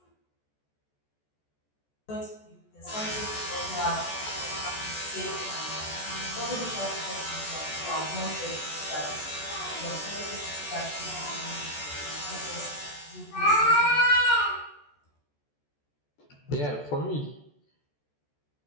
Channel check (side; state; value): right; late; 14 ms